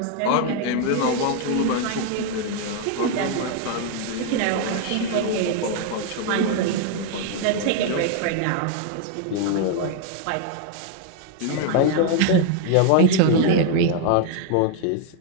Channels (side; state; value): both; different; correlation 0.00